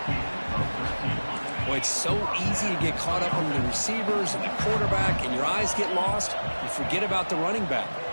Boy, it's so easy to get caught up on the receivers and the quarterback, and your eyes get lost. You forget about the running back.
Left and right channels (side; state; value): both; inverted; correlation -1.00